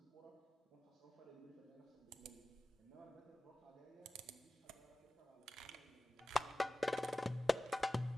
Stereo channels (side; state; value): both; normal; correlation 0.97